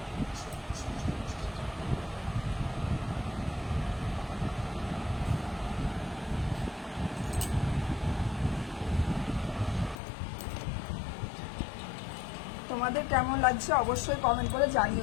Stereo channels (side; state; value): right; drops out; at 10.0 s